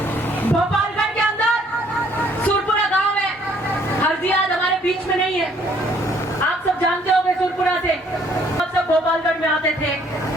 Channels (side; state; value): both; normal; correlation 0.63